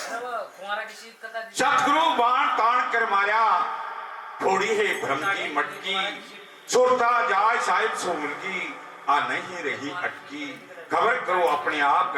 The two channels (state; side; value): identical; both; correlation 1.00